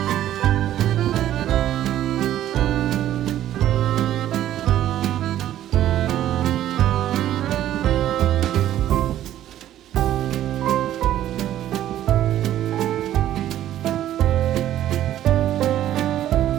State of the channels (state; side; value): quieter; left; 12.3 dB